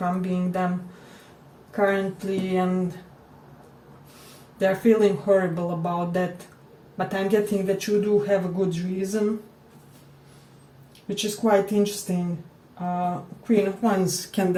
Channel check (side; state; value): both; identical; correlation 1.00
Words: them currently, and they're feeling horrible about that. But I'm getting that you do have a good reason, which is quite interesting. Queen of Wands can